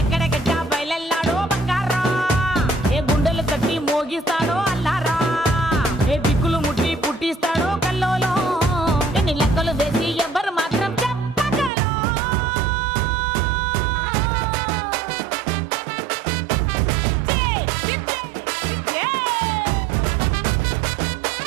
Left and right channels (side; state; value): left; drops out; at 11.7 s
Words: బయలెల్లాడో బంగారా ఏ గుండెలు కట్టి మోగిస్తాడో అల్లారా ఏ దిక్కులు ముట్టి పుట్టిస్తాడో కల్లోలో ఎన్ని లెక్కలు వేసి ఎవ్వరు